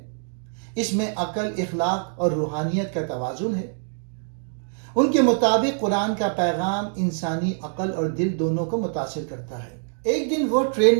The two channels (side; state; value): left; silent; digital silence